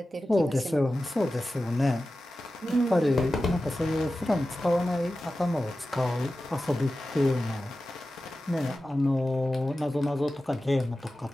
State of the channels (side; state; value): both; normal; correlation 0.94